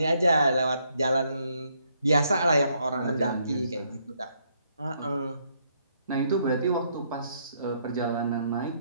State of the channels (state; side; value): inverted; both; correlation -0.73